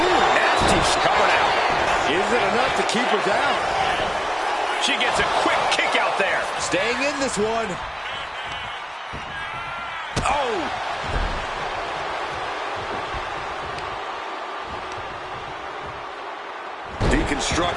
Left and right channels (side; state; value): both; identical; correlation 1.00